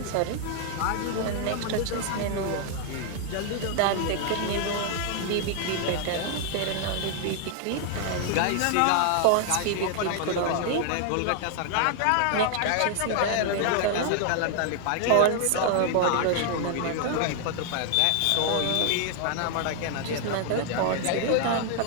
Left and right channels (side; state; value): both; different; correlation 0.00